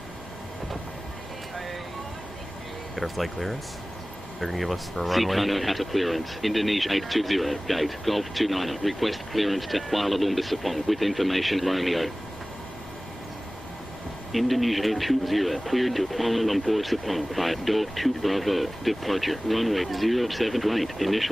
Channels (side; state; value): both; normal; correlation 0.98